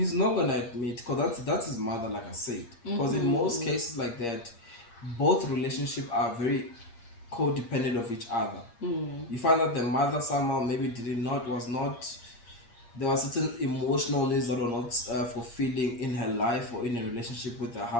not gonna admit because that's his mother, like I said. Because in most cases like that, both relationships are very codependent of each other. You find that the mother somehow maybe did not was not there were certain emotional needs that were not fulfilling in her life or in a relationship with her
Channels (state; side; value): late; right; 8.6 ms